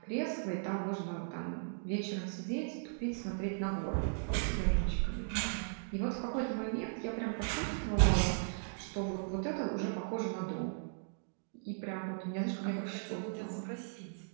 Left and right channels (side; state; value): left; silent; digital silence